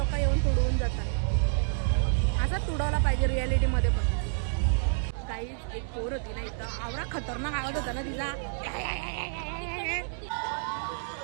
येऊन तुडवून जातात. असं तुडवला पाहिजे रियालिटी मध्ये पण. काहीच एक पोर होती ना इथं, आवरा खतरनाक आवाज होता ना तिचा.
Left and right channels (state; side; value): silent; left; 59 dB below the other